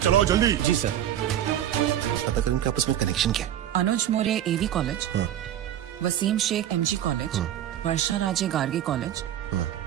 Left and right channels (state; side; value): quieter; left; 11.2 dB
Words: चलाओ जल्दी। जी सर। पता करें इनके आपस में कनेक्शन क्या? Anuj More AV college, Waseem Shaikh MG college, Varsha Raje Gargi college,